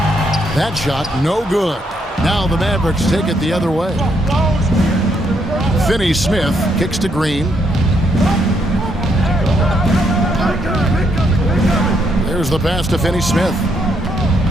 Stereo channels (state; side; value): normal; both; correlation 0.74